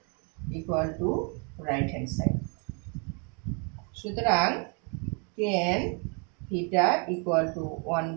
equal to right hand side. সুতরাং tan theta equal to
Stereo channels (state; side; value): quieter; left; 36.2 dB